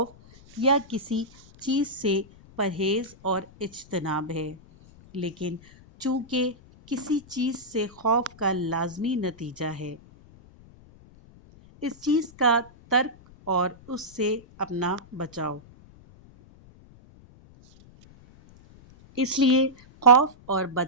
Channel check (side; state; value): left; noise; rumble, 24 dB below the sound